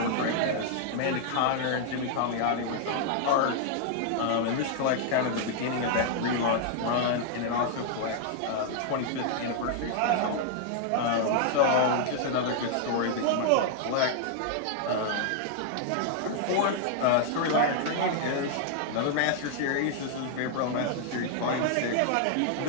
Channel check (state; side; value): different; both; correlation 0.00